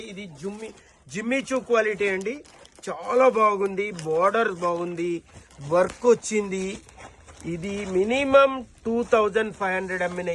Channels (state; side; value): identical; both; correlation 1.00